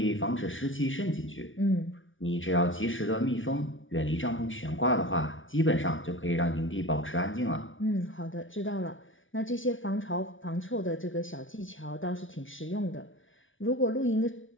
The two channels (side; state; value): right; late; 0.57 ms